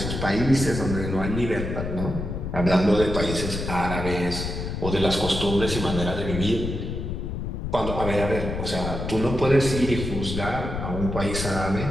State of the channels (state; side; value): noise; left; rumble, 4 dB below the sound